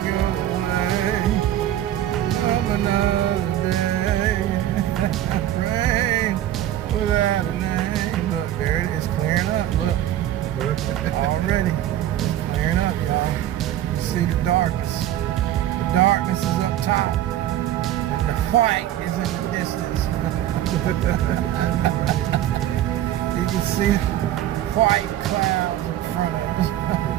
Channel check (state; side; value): quieter; left; 12.4 dB